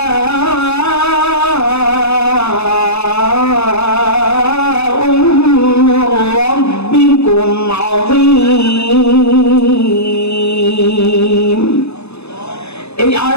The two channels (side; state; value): right; late; 0.79 ms